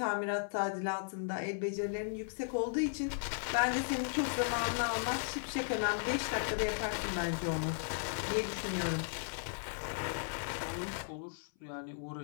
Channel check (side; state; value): right; silent; 54 dB below the other